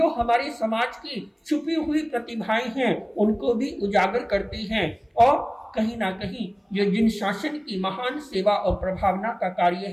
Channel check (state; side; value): identical; both; correlation 1.00